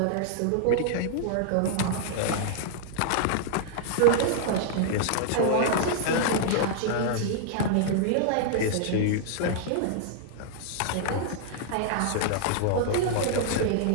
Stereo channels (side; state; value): both; different; correlation -0.01